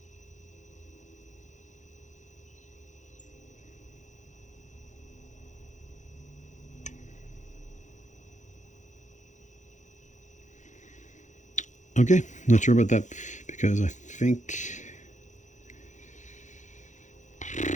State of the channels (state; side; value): late; right; 0.35 ms